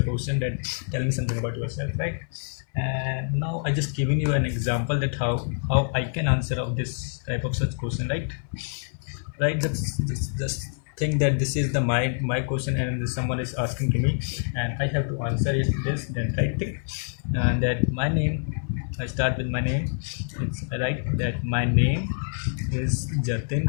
question, that tell me something about yourself, right? And now I just given you an example that how I can answer of this type of such question, right? Just think that this is the my question and someone is asking to me and I have to answer it this then, right? And that my name, I start with my name. It's right that my name is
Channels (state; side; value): silent; right; digital silence